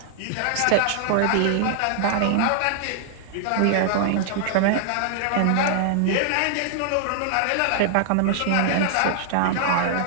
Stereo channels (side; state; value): both; different; correlation -0.01